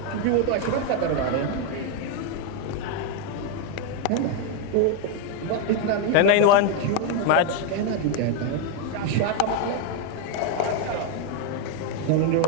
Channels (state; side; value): different; both; correlation 0.01